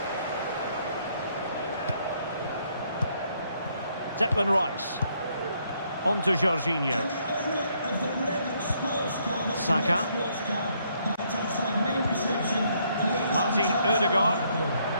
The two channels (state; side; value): inverted; both; correlation -0.71